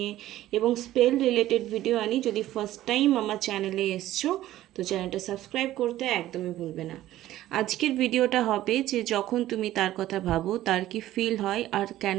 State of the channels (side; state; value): left; quieter; 14.4 dB